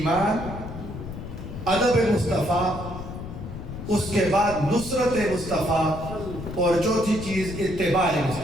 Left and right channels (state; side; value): noise; left; rumble, 9 dB below the sound